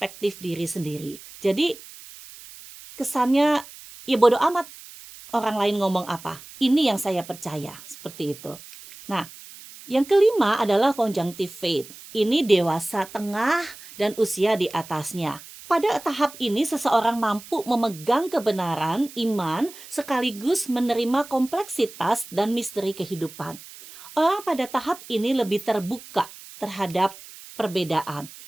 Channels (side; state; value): right; noise; hiss, 17 dB below the sound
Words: diri sendiri. Jadi kesannya ya bodo amat orang lain ngomong apa. Ini yang saya percaya, seperti itu. Nah, yang kelima adalah conjunctive faith. Ini dewasa tengah dan usia di atasnya. Pada tahap ini seseorang mampu memegang kebenaran, iman, sekaligus menerima kompleksitas dan misteri kehidupan. Orang pada tahap ini lebih terbuka terhadap perbedaan.